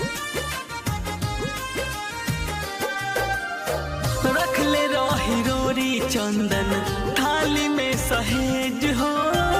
रखले रही रोरी चंदन थाली में सहेज हो।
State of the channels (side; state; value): both; identical; correlation 1.00